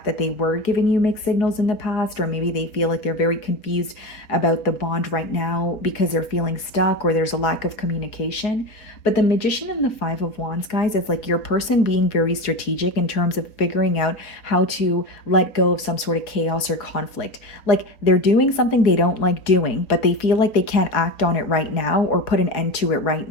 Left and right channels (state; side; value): late; right; 4.7 ms